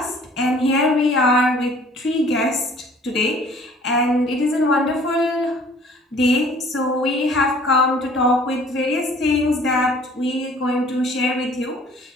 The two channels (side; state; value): both; normal; correlation 0.53